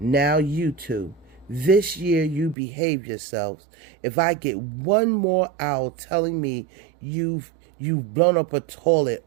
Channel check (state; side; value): drops out; left; at 2.6 s